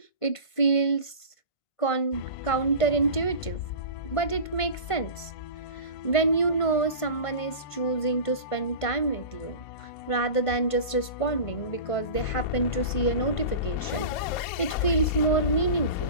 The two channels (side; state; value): right; late; 1.5 ms